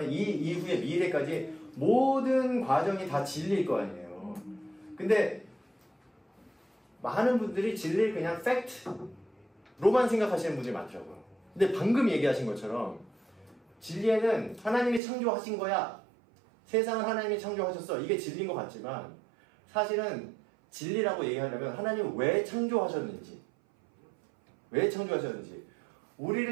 이 이후의 미래까지 모든 과정이 다 진리일 거 아니에요. 근데 많은 분들이 진리를 그냥 팩트로만 생각하시는 분들이 많더라고요. 근데 방금 얘기하신 것처럼 진리에는 하나님이 창조하신 거야. 세상을 하나님이 창조하셨어. 이게 진리인 것 같지만 사실은 진리라고 얘기하려면 하나님은 왜 창조하셨는지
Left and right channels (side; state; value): left; drops out; at 15.0 s